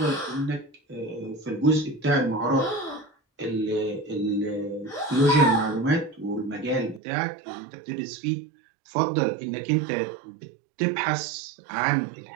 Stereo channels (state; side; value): drops out; left; at 7.0 s